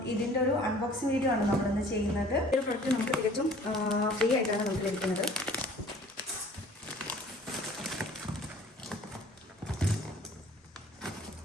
ഇതിൻ്റെ ഒരു അൺബോക്സിങ് വീഡിയോ ആണ് നമ്മളിന്ന് ചെയ്യുന്നത്. ഈ ഒരു പ്രൊഡക്റ്റ് നമുക്ക് തികച്ചും ഫ്രീ ആയിട്ടാണ് നമുക്ക് ലഭിക്കുന്നത്.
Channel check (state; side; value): normal; both; correlation 0.50